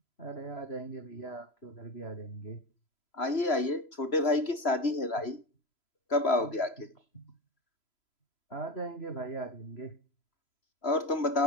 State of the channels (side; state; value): right; late; 3.0 ms